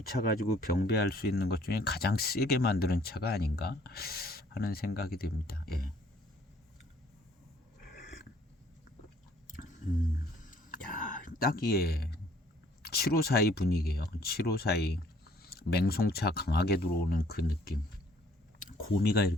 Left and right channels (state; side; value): normal; both; correlation 0.61